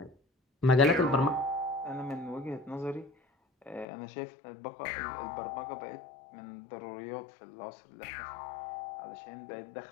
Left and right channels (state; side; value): drops out; right; at 3.9 s